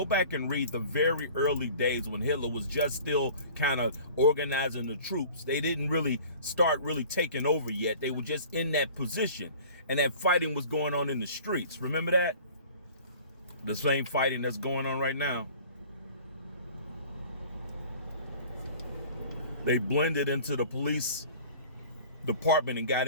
back and read the very early days when Hitler was just still kind of organizing the troops. They didn't really start taking over yet. They were just in that position, and that fighting was going on in the streets. Remember that? The same fighting that's going on right now. They blended into the police department and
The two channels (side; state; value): both; inverted; correlation -0.46